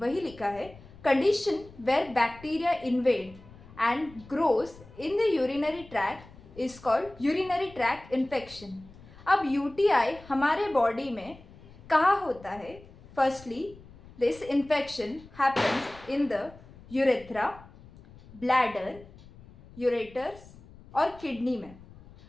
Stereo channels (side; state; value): left; noise; rumble, 21 dB below the sound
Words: लिखा है, condition where bacteria invade and grows in the urinary tract is called urinary tract infection. अब यूटीआई हमारे बॉडी में कहाँ होता है? Firstly, this infection happens in the urethra, bladder, ureters और किडनी में।